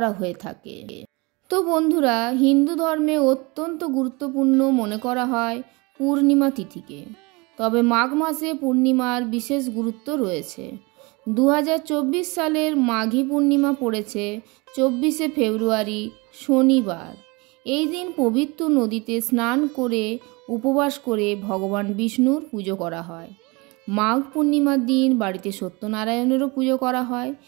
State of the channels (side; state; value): left; quieter; 26.6 dB